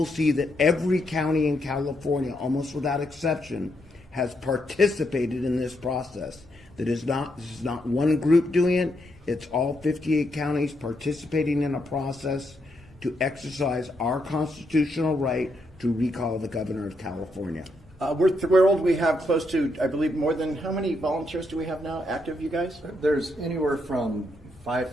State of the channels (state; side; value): normal; both; correlation 0.79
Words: see that every county in California, almost without exception, has participated in this process. This is not one group doing it, it's all 58 counties participating in a process to exercise our constitutional right to recall the governor of California. We're thrilled. We have close to, I believe, more than, how many volunteers do we have now active, you guys? There's anywhere from